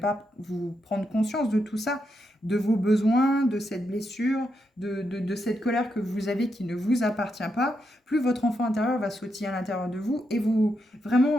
vous prendre conscience de tout ça, de vos besoins, de cette blessure, de cette colère que vous avez qui ne vous appartient pas, plus votre enfant intérieur va sautiller à l'intérieur de vous et vous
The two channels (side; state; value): both; normal; correlation 0.82